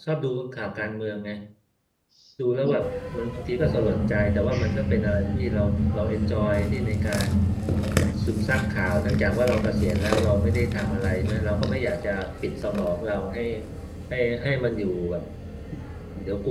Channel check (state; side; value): identical; both; correlation 1.00